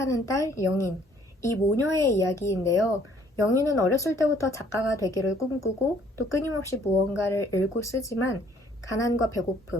딸 영인, 이 모녀의 이야기인데요. 영인은 어렸을 때부터 작가가 되기를 꿈꾸고 또 끊임없이 무언가를 읽고 쓰지만 가난과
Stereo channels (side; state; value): both; normal; correlation 0.61